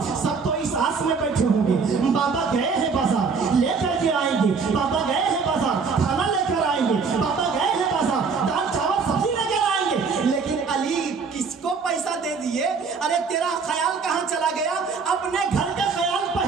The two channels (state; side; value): quieter; left; 5.1 dB